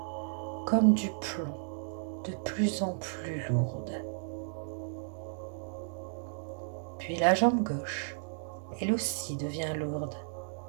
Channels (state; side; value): silent; left; digital silence